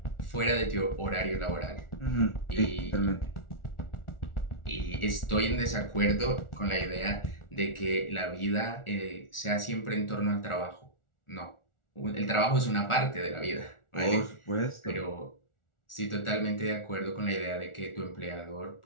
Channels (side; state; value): right; late; 1.4 ms